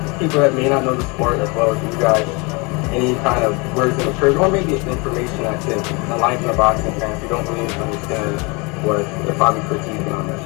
people that may not know the sport as well as you guys. Any kind of words of encouragement, or maybe it's information that can enlighten the boxing fans who don't really understand what they're probably critiquing on that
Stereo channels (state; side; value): quieter; right; 28.8 dB